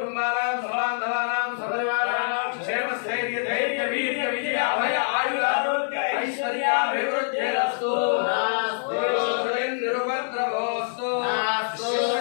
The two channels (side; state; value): right; silent; digital silence